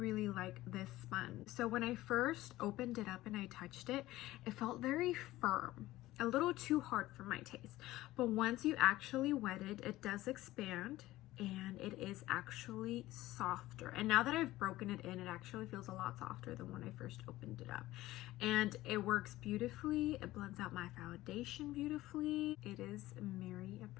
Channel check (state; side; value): quieter; right; 16.7 dB